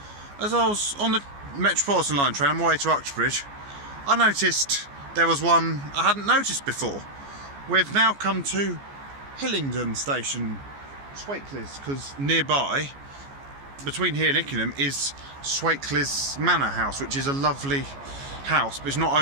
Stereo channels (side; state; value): left; late; 14 ms